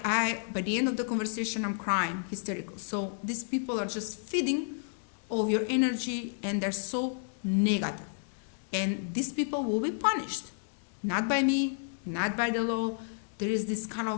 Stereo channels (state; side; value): silent; right; digital silence